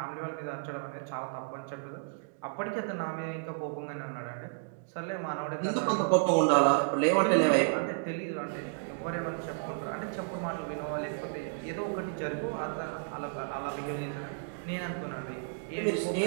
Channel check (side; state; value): left; silent; digital silence